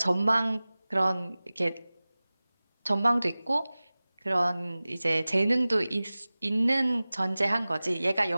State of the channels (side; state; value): both; inverted; correlation -0.98